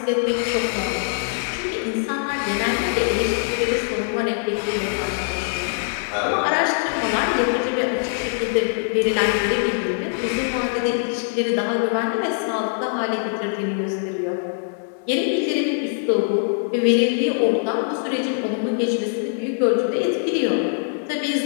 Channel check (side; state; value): right; silent; digital silence